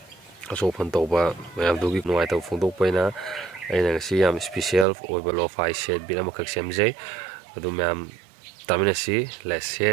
asofan tawba mayam dugi nuai taw phongdok paina aina ngasi yam special oiba Lofi set bit amakak semjai adu mayam taminasi. Let's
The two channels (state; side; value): drops out; left; at 4.9 s